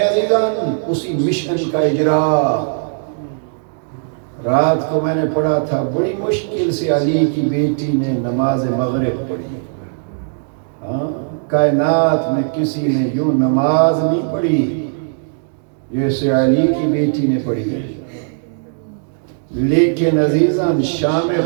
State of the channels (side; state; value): left; silent; digital silence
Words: عزیزان؟ اسی مشن کا اجرا. رات کو میں نے پڑھا تھا بڑی مشکل سے علی کی بیٹی نے نماز مغرب پڑھی. کائنات میں کسی نے یوں نماز نہیں پڑھی جیسے علی کی بیٹی نے پڑھی. لیکن عزیزان شام